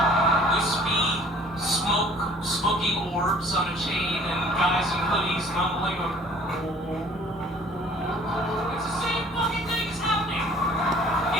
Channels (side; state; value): both; normal; correlation 0.53